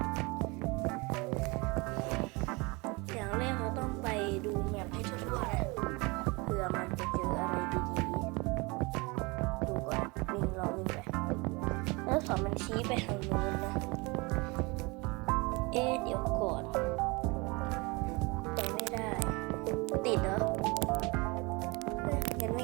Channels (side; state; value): left; quieter; 26.5 dB